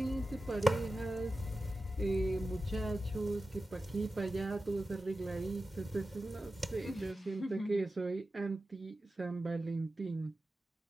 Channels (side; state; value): both; normal; correlation 0.93